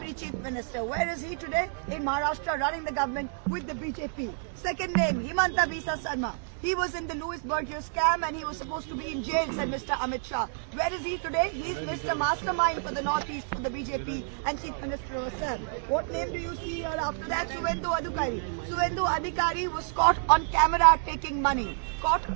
Chief Minister. Where is he today? In Maharashtra, running the government with the BJP. Second name, Himanta Bisa Sarma. He was in the Louis Berger scam and he was supposed to be in jail, said Mr. Amit Shah. Where is he today? He is Mr. Mastermind for the Northeast, for the BJP and Chief Minister herself. What name do you see here after that? Suvendu Adhikari. Suvendu Adhikari was caught on camera taking money. Caught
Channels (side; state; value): left; silent; digital silence